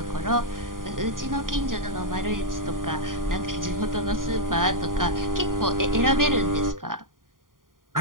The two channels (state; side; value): late; left; 0.90 ms